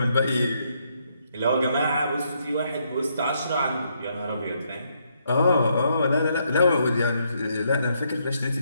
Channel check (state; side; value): inverted; both; correlation -0.75